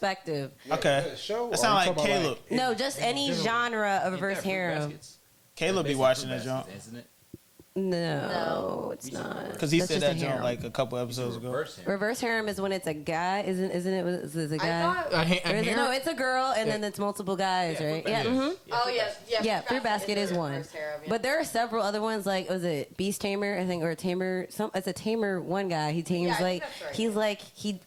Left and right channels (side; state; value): both; identical; correlation 1.00